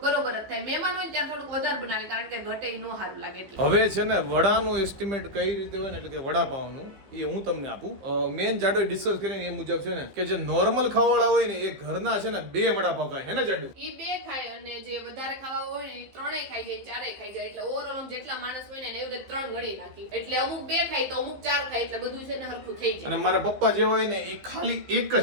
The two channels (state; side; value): late; left; 15 ms